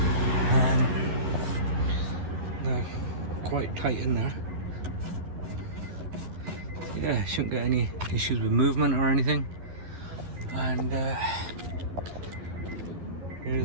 They're quite tight in there. Yeah, shouldn't get any issues with movement or anything. And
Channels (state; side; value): late; left; 11 ms